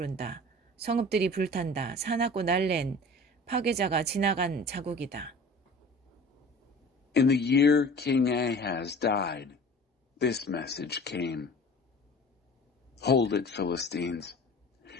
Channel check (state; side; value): normal; both; correlation 0.42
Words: 성읍들이 불탄다. 사납고 날랜 파괴자가 지나간 자국이다. In the year King Ahaz died, this message came. Hold it, Philistines.